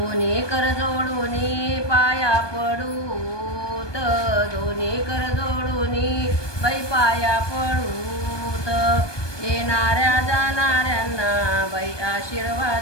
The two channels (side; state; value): right; late; 1.2 ms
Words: कर जोडूनी पाया पडूत, दोन्ही कर जोडूनी बाई पाया पडूत, येणाऱ्या जाणाऱ्यांना बाई